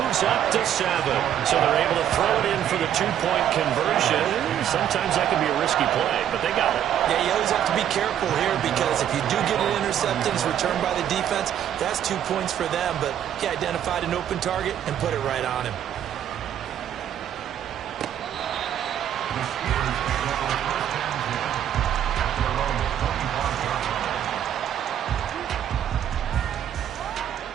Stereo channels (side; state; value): left; quieter; 10.3 dB